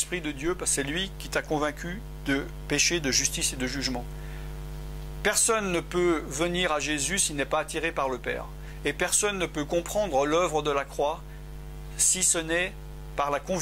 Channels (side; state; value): both; identical; correlation 1.00